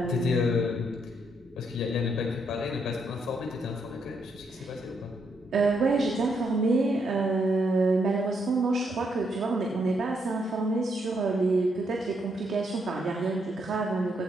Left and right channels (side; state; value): both; normal; correlation 0.76